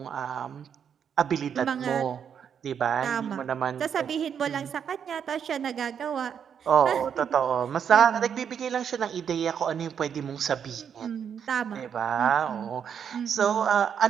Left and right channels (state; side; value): quieter; left; 7.8 dB